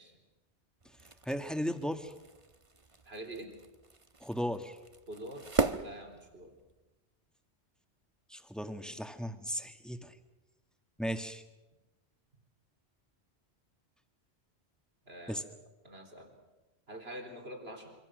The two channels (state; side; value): normal; both; correlation 0.31